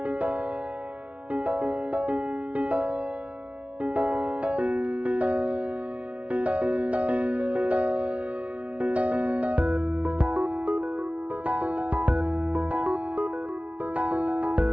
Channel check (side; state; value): left; late; 0.064 ms